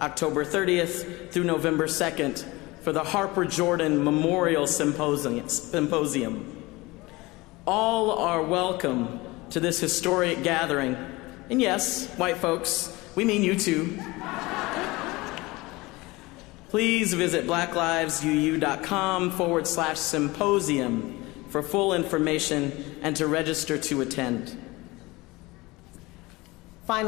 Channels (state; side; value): quieter; right; 22.0 dB